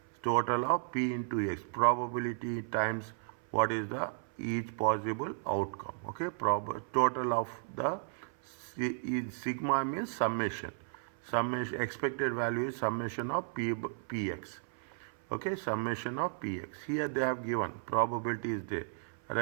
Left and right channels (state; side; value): silent; left; 55 dB below the other